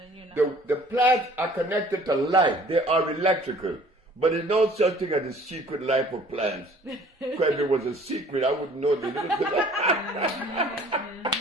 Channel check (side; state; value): both; normal; correlation 0.53